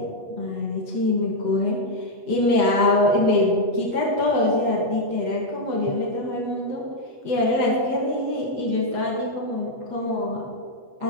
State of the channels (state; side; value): late; left; 8.2 ms